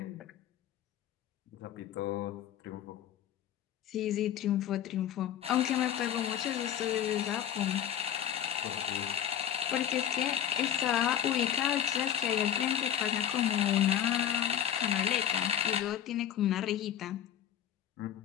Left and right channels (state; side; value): quieter; right; 10.0 dB